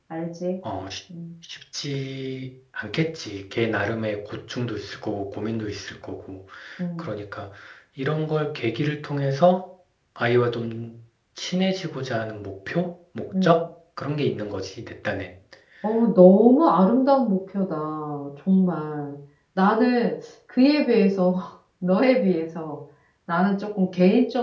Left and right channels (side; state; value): both; identical; correlation 1.00